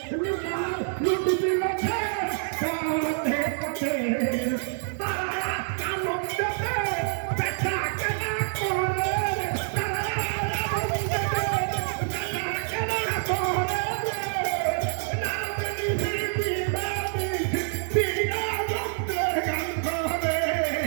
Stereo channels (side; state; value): left; silent; 60 dB below the other